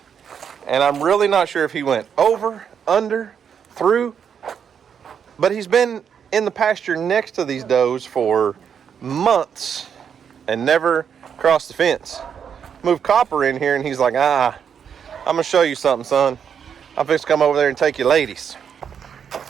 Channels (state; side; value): quieter; left; 7.6 dB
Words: And I'm really not sure if he went over, under, through. But he's been in the pasture next to these does for months and never crossed the fence. Moved Copper in here and he's like, I'm going to show you something, son. I'm fixing to come over there and take you ladies.